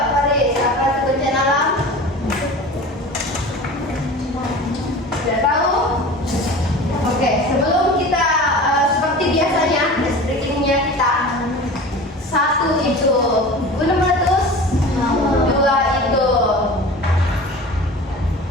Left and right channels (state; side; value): normal; both; correlation 0.37